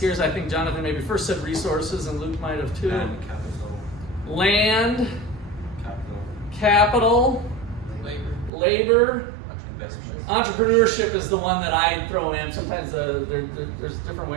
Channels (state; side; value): drops out; left; at 8.5 s